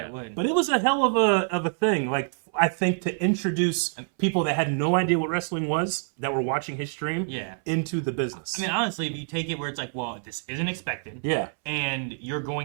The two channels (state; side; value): silent; left; 61 dB below the other